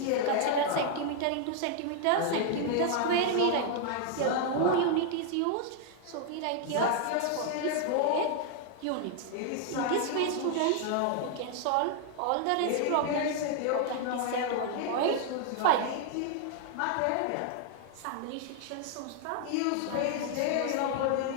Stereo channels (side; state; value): both; different; correlation 0.00